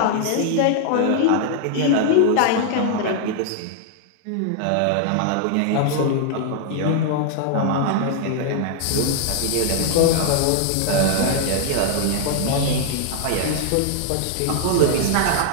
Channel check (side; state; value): both; different; correlation 0.00